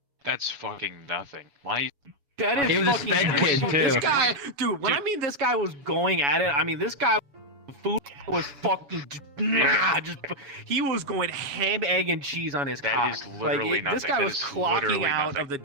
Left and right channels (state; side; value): late; left; 7.1 ms